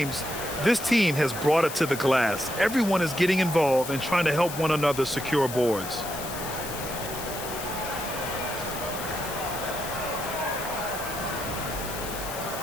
this team has brought it to the glass. Everyone is getting involved and trying to help one another secure boards.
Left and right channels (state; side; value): noise; left; hiss, 9 dB below the sound